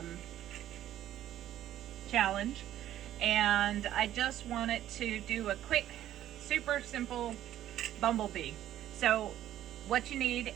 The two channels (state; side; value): quieter; left; 12.4 dB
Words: challenge. And I just wanted to do a quick, super simple bumblebee. So what you need,